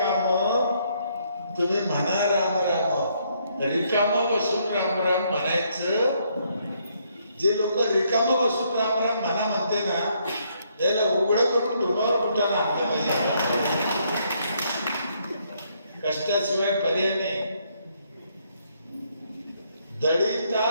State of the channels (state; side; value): inverted; both; correlation -0.71